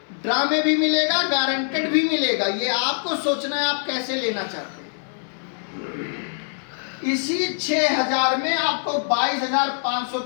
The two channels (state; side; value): silent; right; digital silence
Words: ड्रा में भी मिलेगा, गारंटेड भी मिलेगा। ये आपको सोचना है आप कैसे लेना चाहते हैं। इसी 6000 में आपको 22,500